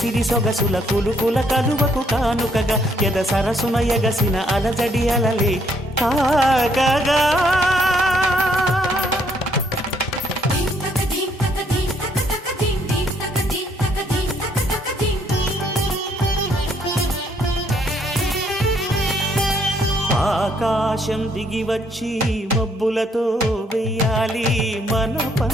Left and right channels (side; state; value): both; normal; correlation 0.69